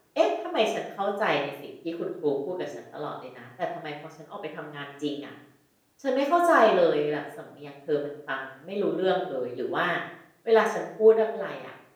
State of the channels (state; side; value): identical; both; correlation 1.00